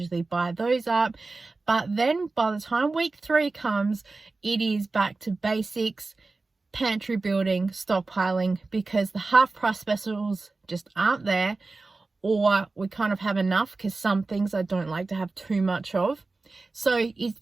buy those up. But then by the time week 3 comes, it is back to basics, pantry building, stockpiling, because the half price specials just aren't there, or we kind of have enough because some things I don't like to have too much of. So it's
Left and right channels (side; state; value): left; quieter; 3.6 dB